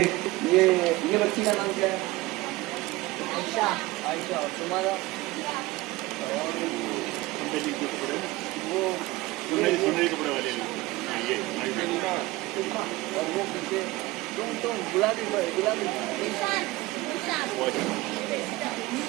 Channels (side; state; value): left; quieter; 19.8 dB